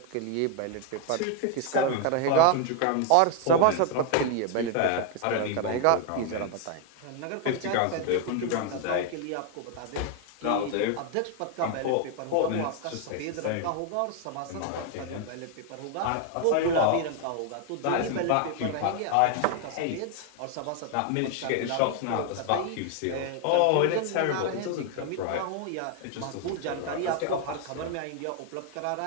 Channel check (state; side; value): different; both; correlation 0.00